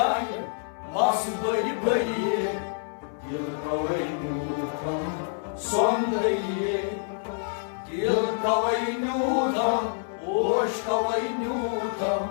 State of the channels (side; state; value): right; silent; 60 dB below the other